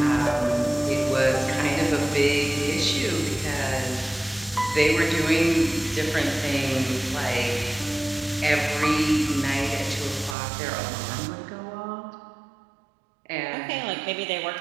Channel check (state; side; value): drops out; left; at 10.4 s